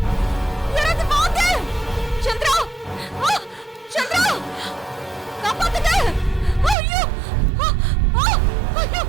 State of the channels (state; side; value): drops out; left; at 6.8 s